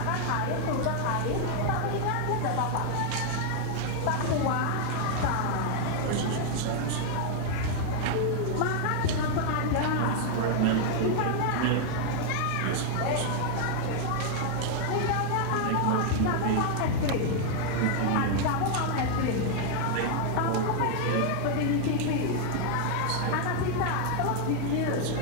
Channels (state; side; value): different; both; correlation 0.00